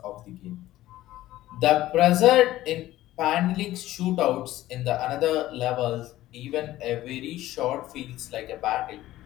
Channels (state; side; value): quieter; right; 15.2 dB